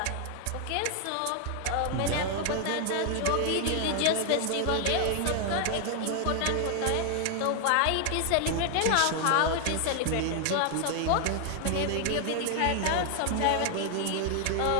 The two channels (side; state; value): both; different; correlation 0.00